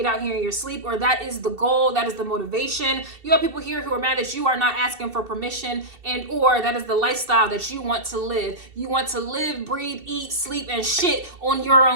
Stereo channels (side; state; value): left; late; 2.7 ms